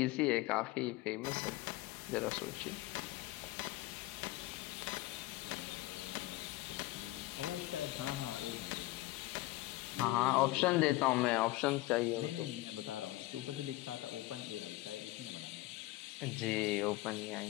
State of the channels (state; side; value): quieter; right; 18.9 dB